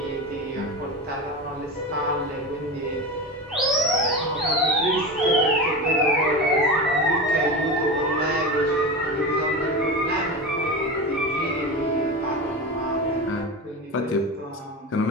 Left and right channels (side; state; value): both; normal; correlation 0.25